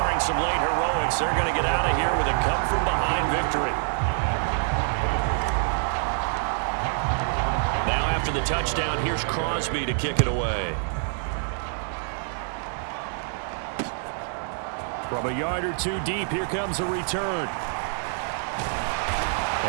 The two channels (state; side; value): silent; left; 60 dB below the other